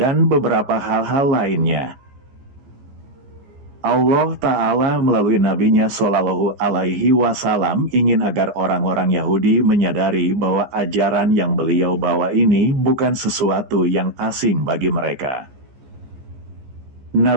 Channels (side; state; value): left; late; 14 ms